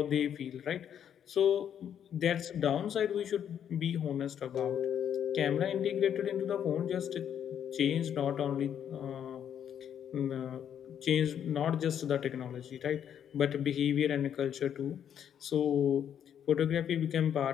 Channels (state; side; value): quieter; right; 9.1 dB